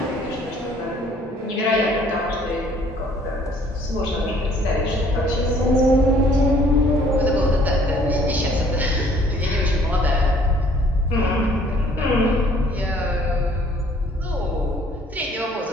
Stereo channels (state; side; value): normal; both; correlation 0.59